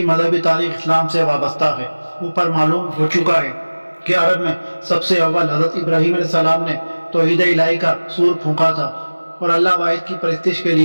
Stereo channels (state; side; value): inverted; both; correlation -1.00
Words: مذہبی تاریخ اسلام سے وابستہ ہے۔ اوپر معلوم ہو چکا ہے کہ عرب میں سب سے اول حضرت ابراہیم علیہ السلام نے توحید الہی کا سور پھونکا تھا اور اللہ واحد کی پرستش کے